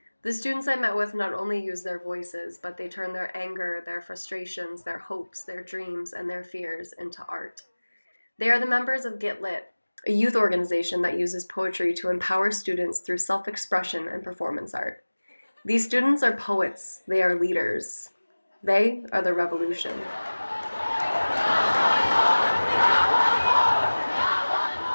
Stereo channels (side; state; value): both; inverted; correlation -1.00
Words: The students I met with not only use their voices, but they turn their anger, their frustrations, their hopes, their dreams, and their fears into art. They are the members of Get Lit, a youth organization that uses poetry to empower students through self-expression and performance art. These students are poets. They are leaders. They are the revolution.